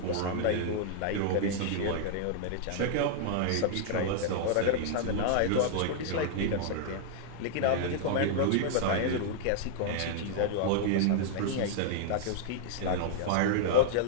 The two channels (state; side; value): different; both; correlation -0.01